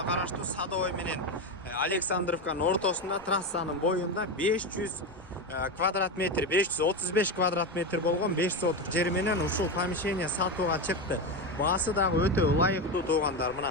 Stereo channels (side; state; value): left; noise; rumble, 23 dB below the sound